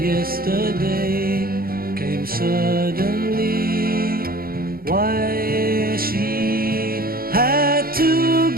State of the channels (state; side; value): late; left; 0.43 ms